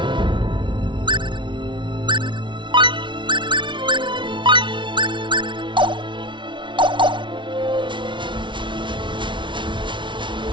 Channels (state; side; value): late; left; 0.24 ms